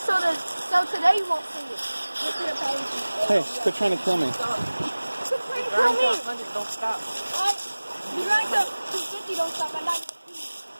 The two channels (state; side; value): inverted; both; correlation -1.00